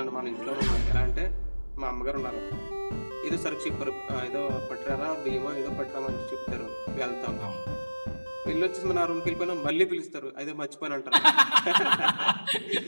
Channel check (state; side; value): inverted; both; correlation -1.00